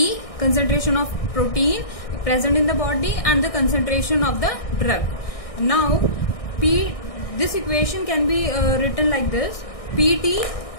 concentration of protein present in the body, and the concentration of the drug. Now this equation can be written like this: PD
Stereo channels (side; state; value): right; late; 1.6 ms